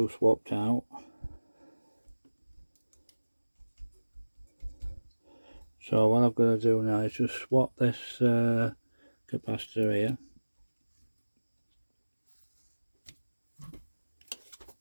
swapped out. So what I've got to do now is just swap this capacitor here.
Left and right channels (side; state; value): both; inverted; correlation -1.00